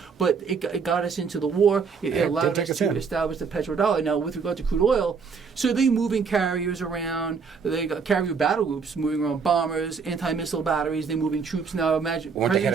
But it got us into the war. It allowed us to establish the petrodollar. Now, with regard to crude oil, so they moving carriers around. They got carrier battle groups moving around, bombers, anti-missile batteries. They're moving troops now. Imagine when they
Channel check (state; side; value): quieter; left; 5.5 dB